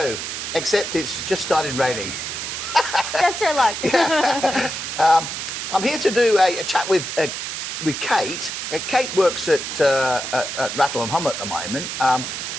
except it's just started raining. Just our luck. I'm here to do a chat with Kait. Kait works at Rattle and Hum at the moment.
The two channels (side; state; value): right; noise; hiss, 5 dB below the sound